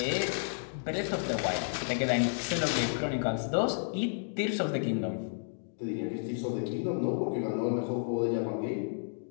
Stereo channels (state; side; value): silent; right; digital silence